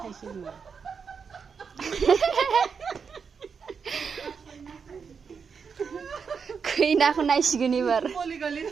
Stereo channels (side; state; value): left; quieter; 6.0 dB